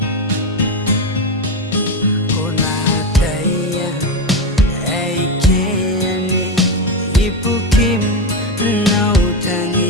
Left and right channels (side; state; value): both; normal; correlation 0.14